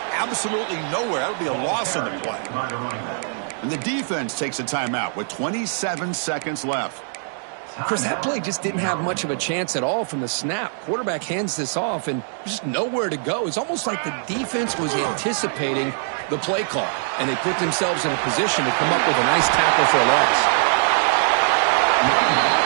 absolutely nowhere. That would be a loss in the play. And the defense takes a timeout with 27 seconds left. Chris, that play just didn't have much of a chance at all from the snap. Quarterback hands this off, and there's just nowhere to go. It's almost like the defense was anticipating the play call, and they put themselves in a position to come up with a nice tackle for a loss.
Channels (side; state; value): left; silent; 64 dB below the other